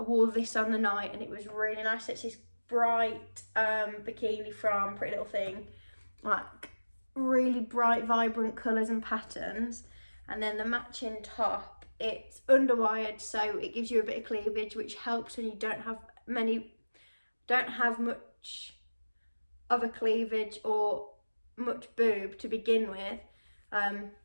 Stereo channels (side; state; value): both; inverted; correlation -1.00